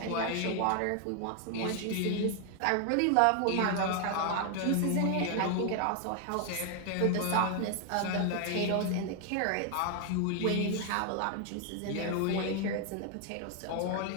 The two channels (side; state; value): both; different; correlation 0.00